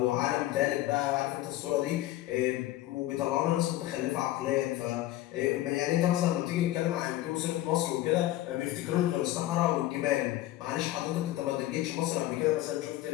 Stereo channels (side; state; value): right; quieter; 15.2 dB